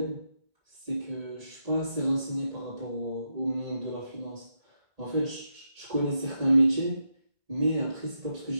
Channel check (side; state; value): left; late; 1.8 ms